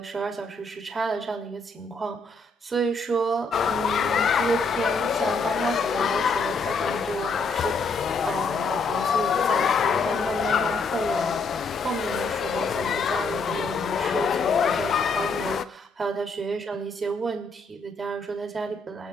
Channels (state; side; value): quieter; right; 3.5 dB